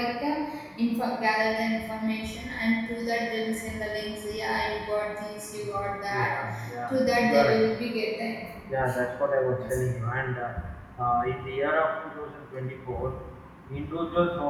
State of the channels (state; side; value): identical; both; correlation 1.00